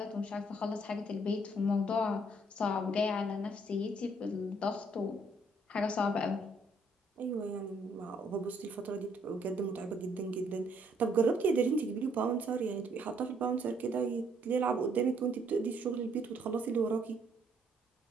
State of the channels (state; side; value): normal; both; correlation 0.67